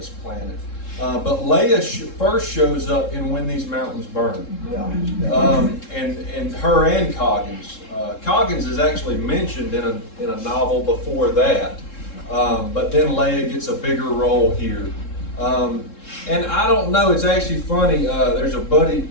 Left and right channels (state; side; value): late; right; 3.7 ms